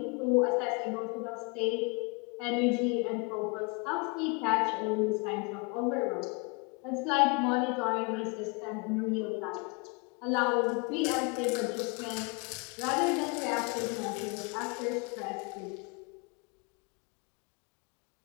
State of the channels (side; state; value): right; quieter; 31.3 dB